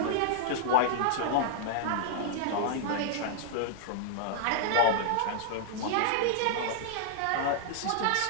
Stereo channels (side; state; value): both; different; correlation -0.01